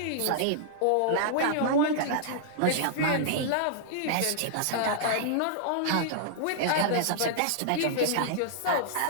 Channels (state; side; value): different; both; correlation -0.01